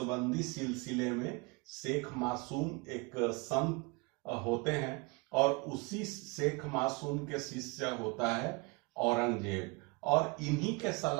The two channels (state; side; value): quieter; left; 28.1 dB